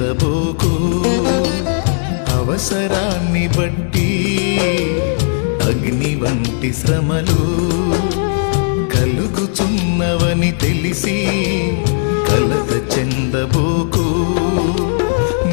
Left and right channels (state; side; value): silent; right; 69 dB below the other